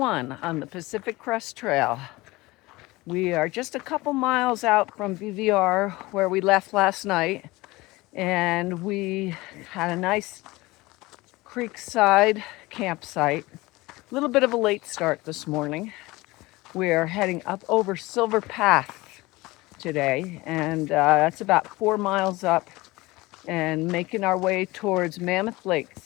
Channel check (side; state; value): right; quieter; 21.0 dB